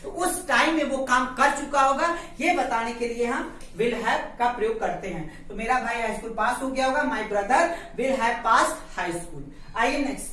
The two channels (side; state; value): both; identical; correlation 1.00